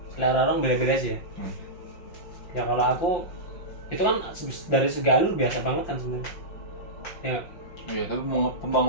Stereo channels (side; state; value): right; late; 5.8 ms